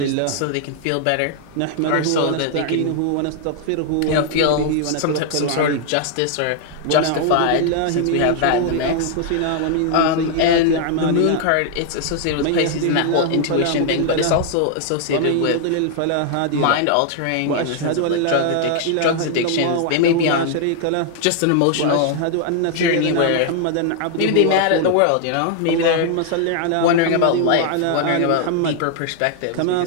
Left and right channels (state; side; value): different; both; correlation 0.00